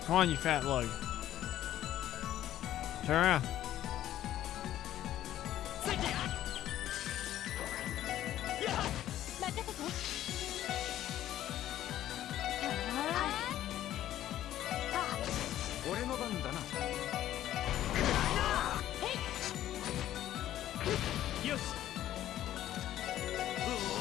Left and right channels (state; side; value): quieter; right; 12.7 dB